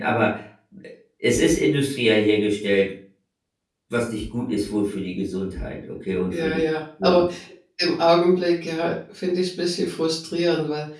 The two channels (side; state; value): both; identical; correlation 1.00